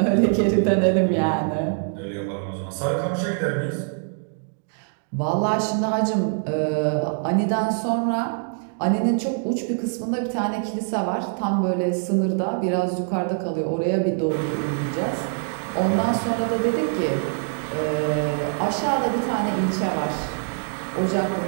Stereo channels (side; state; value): left; silent; 59 dB below the other